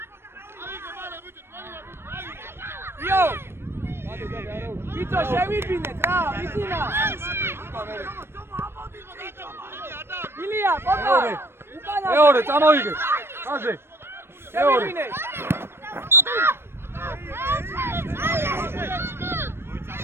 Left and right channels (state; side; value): late; left; 0.12 ms